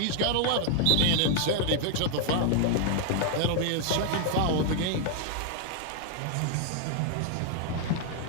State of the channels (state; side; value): different; both; correlation 0.00